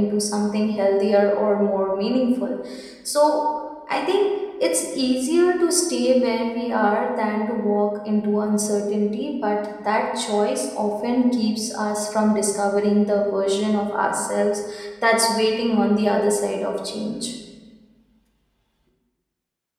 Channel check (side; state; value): both; identical; correlation 1.00